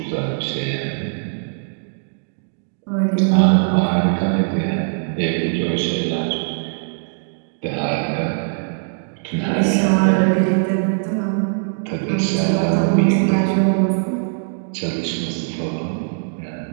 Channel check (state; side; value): silent; left; 65 dB below the other